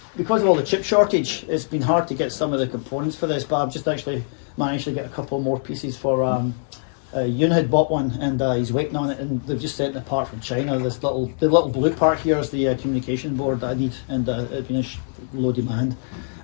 because of all the chip shortage, it's been hard to get some of the components for this, but I've just actually managed to get a couple more pieces for. Yoon had bought one, and he's waiting on it, and they've just sent it apart from China. The little blue part here is the communication board that I need, and it's been low demand.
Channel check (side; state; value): right; silent; digital silence